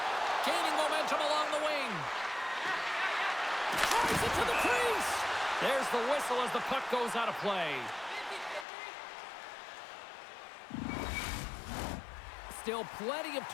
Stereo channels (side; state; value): right; drops out; at 8.7 s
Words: Gaining momentum along the wing. Drives it to the crease. There's the whistle as the puck goes out of play. Still plenty of